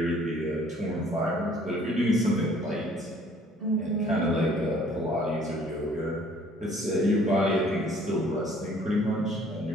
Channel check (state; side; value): normal; both; correlation 0.57